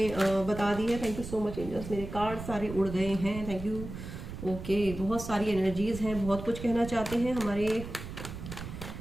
बता दी है। Thank you so much angels, मेरे कार्ड सारे उड़ गए हैं, थैंक यू। ओके, बहुत सारी एनर्जीज हैं, बहुत कुछ कहना चाहते हैं हमारे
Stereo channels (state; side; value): noise; right; rumble, 9 dB below the sound